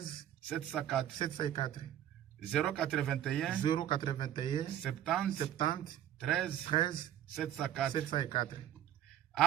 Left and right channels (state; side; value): quieter; left; 11.3 dB